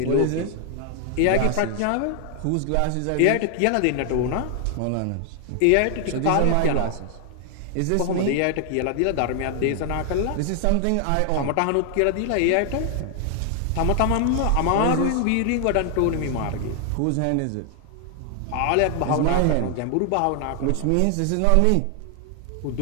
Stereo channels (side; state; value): both; different; correlation 0.00